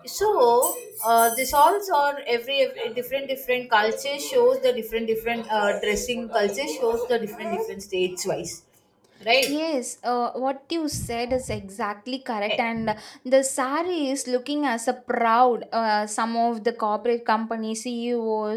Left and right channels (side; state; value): both; identical; correlation 1.00